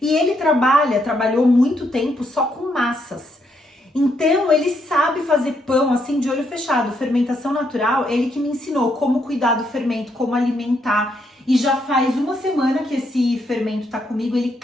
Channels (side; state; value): both; normal; correlation 0.76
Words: e ele trabalhou muito tempo só com massas. Então, ele sabe fazer pão, assim, de olho fechado. Fermentação natural, ele que me ensinou como cuidar do fermento, como alimentar. E já faz uma semana que esse fermento tá comigo, ele